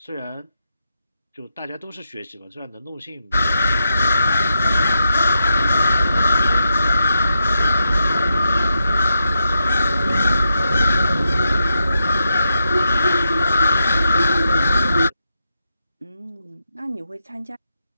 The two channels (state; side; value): inverted; both; correlation -0.85